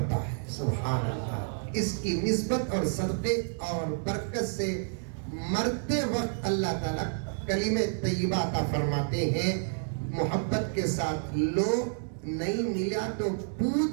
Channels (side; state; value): left; silent; digital silence